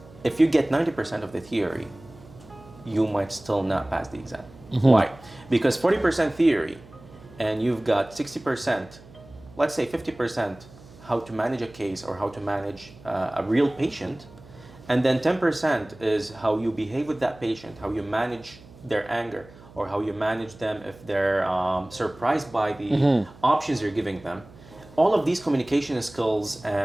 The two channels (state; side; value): noise; right; hum, 21 dB below the sound